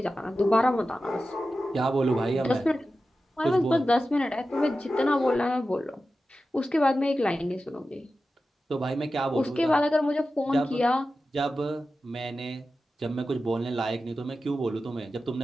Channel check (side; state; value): both; normal; correlation 0.93